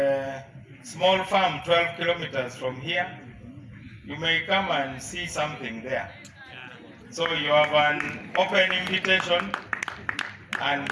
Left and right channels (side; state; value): both; identical; correlation 1.00